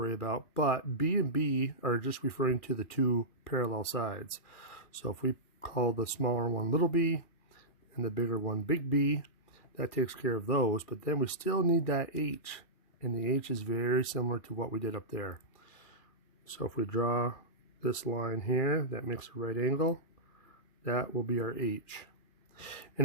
about, but B and B are just referring to the 2 parallel sides. So if we call the smaller one little b and the bigger one big B, that takes care of those, but then we still need that H, and the H is very similar to what we did up there. So if we draw this line here that makes a right angle, that will be our H. And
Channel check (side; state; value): right; late; 2.4 ms